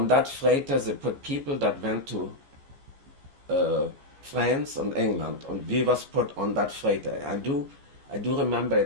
that freighter, they put people that went to France and England, and we was put on that freighter. I do remember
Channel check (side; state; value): left; late; 14 ms